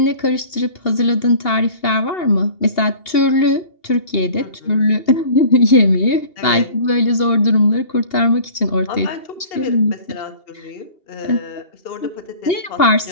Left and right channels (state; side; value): late; right; 2.8 ms